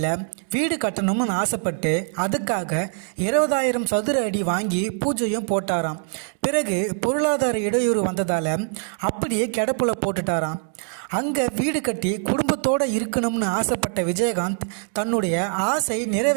வீடு கட்டணும்னு ஆசைப்பட்டு அதுக்காக 20,000 சதுர அடி வாங்கி பூஜையும் போட்டாராம். பிறகு பொருளாதார இடையூறு வந்ததால் அப்படியே கிடப்புல போட்டுட்டாராம். அங்கே வீடு கட்டி குடும்பத்தோடு இருக்கணும்னு ஆசைப்பட்ட விஜயகாந்த் தன்னுடைய ஆசை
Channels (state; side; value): silent; left; 56 dB below the other